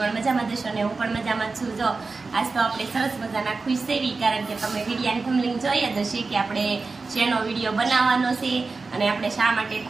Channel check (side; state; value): left; quieter; 4.0 dB